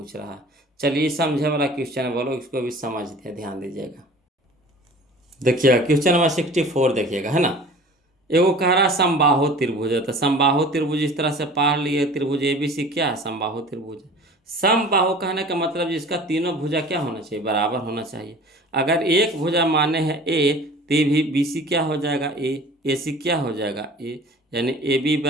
रहा है। चलिए समझे वाला क्वेश्चन है, बोलो इसको भी समझते ध्यान दीजिएगा। देखिएगा क्वेश्चन नंबर 64 देखिएगा, है ना। एगो कह रहा है समबाहु त्रिभुज है, तो समबाहु त्रिभुज इस तरह से पढ़ लिए, त्रिभुज ABC क्या है समबाहु त्रिभुज है। समबाहु कहने का मतलब जिसका तीनों भुजा क्या होना चाहिए बराबर होना चाहिए। अगर एक भुजा माने है A, तो भी BC क्या हो जाएगा A, AC क्या हो जाएगा A, यानी AB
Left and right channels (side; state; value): both; normal; correlation 0.43